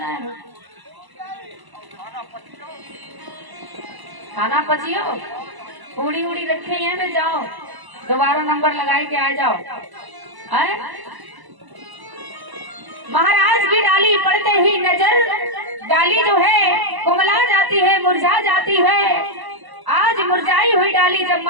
है। खाना पचियो, पूड़ी उड़ी रखे हैं में जाओ, दोबारा नंबर लगाए के आ जाओ। है महाराज की डाली पड़ते ही नजर, डाली जो है कुमला जाती है, मुरझा जाती है। आज मुरझाई हुई डाली जब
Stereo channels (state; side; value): late; left; 1.0 ms